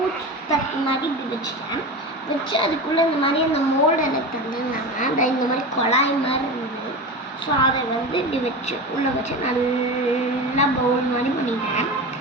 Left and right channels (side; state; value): both; normal; correlation 0.26